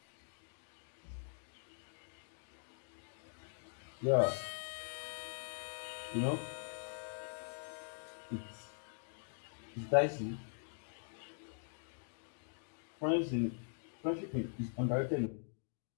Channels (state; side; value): silent; right; digital silence